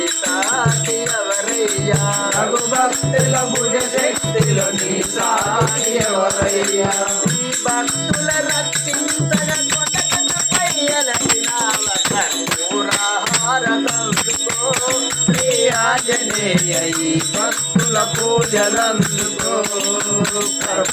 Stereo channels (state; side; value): identical; both; correlation 1.00